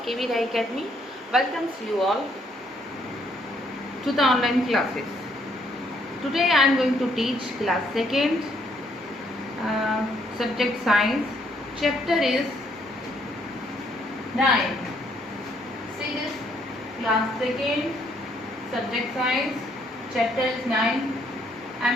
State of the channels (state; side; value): normal; both; correlation 0.69